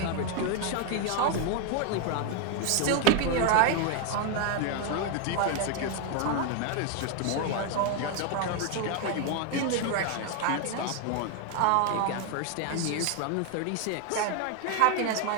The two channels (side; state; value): both; different; correlation 0.01